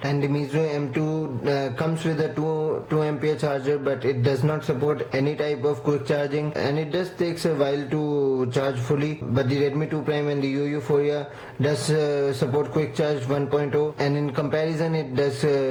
And the Meizu M2 comes with a 2 ampere charger, but it does not support any type of quick charging, and it does takes a while to charge fully. But the Redmi 2 Prime and the Euphoria does support quick charge 1.0, and in comparison it does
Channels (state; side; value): identical; both; correlation 1.00